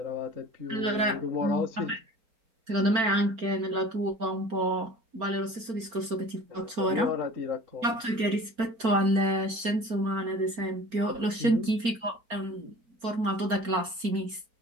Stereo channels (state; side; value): late; left; 4.4 ms